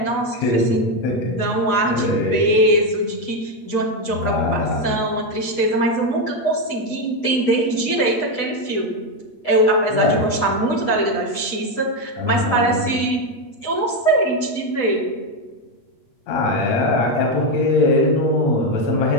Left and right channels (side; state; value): right; late; 8.0 ms